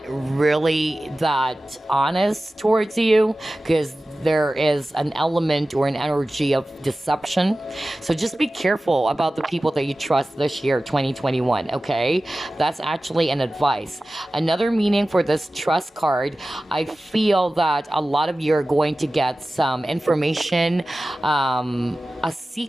really that honest towards you because there is an element or an energy of deception. So just be careful about the people that you trust this year, 2021, okay? That's actually an advice. Another meaning for this trust card, I feel that a lot of you are going to get some information, a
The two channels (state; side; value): normal; both; correlation 0.96